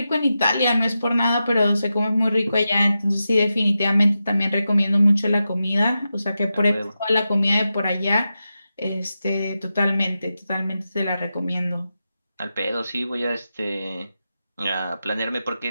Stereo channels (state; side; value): inverted; both; correlation -0.90